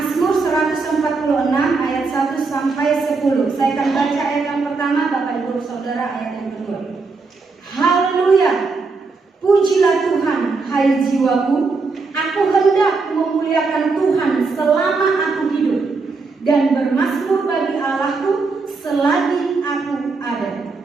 146 ayat 1 sampai 10. Saya akan baca ayat yang pertama, Bapak Ibu Saudara ayat yang kedua. Haleluya. Pujilah Tuhan, hai jiwaku. Aku hendak memuliakan Tuhan selama aku hidup, dan bermazmur bagi Allahku selagi aku ada.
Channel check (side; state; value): left; quieter; 4.2 dB